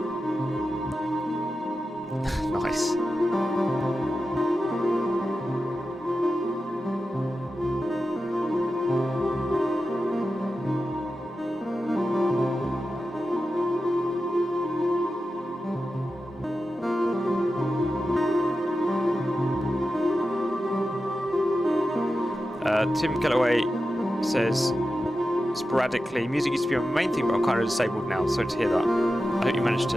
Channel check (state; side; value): normal; both; correlation 0.91